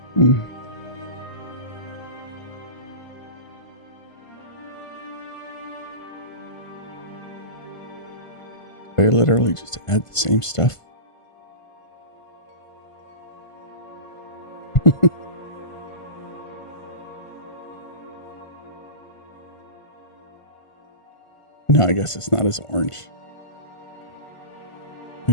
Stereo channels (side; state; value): right; late; 1.5 ms